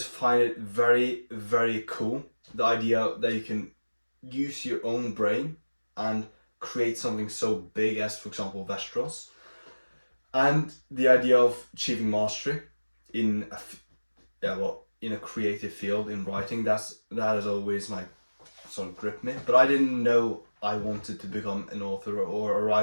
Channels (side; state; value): both; inverted; correlation -1.00